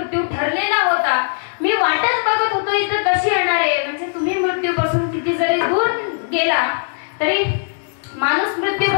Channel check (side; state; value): right; silent; digital silence